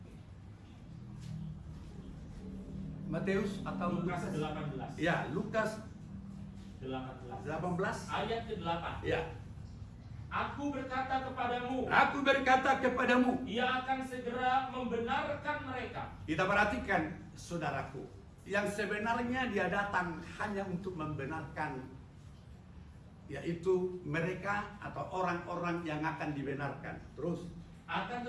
Matius atau Lukas 18. Ya, Lukas 18. 18. Ayat ke-8. Ya. Aku berkata kepadamu, Aku berkata kepadamu. ia akan segera membenarkan mereka. Kita perhatikan, saudaraku, yang sebenarnya dia datang hanya untuk membenarkan, yaitu mereka atau orang-orang yang akan dibenarkan. Terus Akan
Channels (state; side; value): identical; both; correlation 1.00